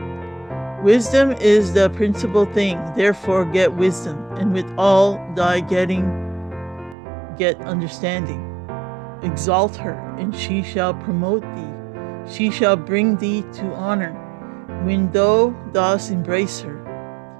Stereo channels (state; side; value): drops out; left; at 7.0 s